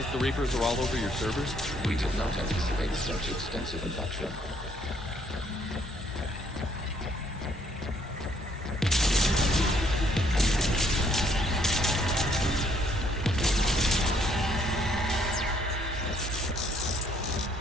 the Reapers are all over your servers? We did not anticipate such extensive infection.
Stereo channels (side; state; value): both; normal; correlation 0.66